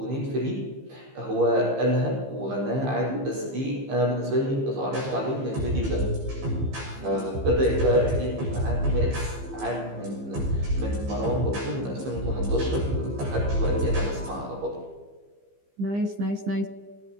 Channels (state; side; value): late; left; 15 ms